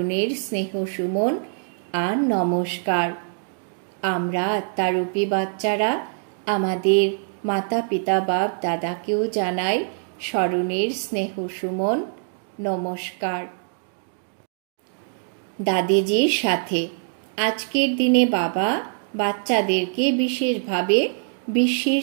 স্নেহ সুমন আর নমস্কার। আমরা আত্মারূপী বাচ্চারা আমাদের মাতা পিতা বাপ দাদাকেও জানাই স্মরণের স্নেহ সুমন নমস্কার। দাদিজির সাথে আজকের দিনে বাবা বাচ্চাদেরকে বিশেষভাবে বিশ্বের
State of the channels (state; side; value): silent; left; 63 dB below the other